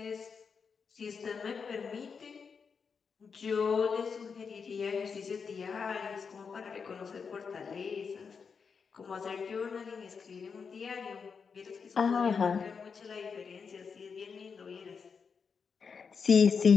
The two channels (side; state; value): right; quieter; 5.8 dB